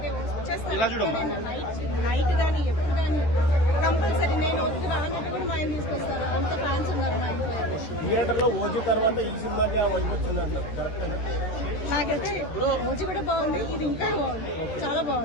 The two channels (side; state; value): right; late; 13 ms